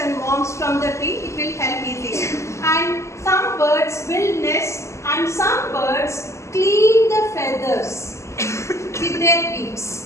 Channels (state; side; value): late; right; 0.14 ms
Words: worms from the tree. It will help easily. And some birds will nest, and some birds clean the feathers with their